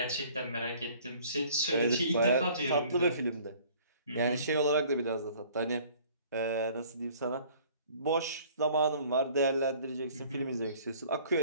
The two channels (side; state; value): both; inverted; correlation -0.53